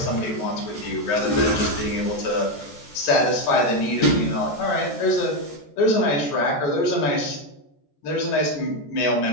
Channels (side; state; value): right; late; 14 ms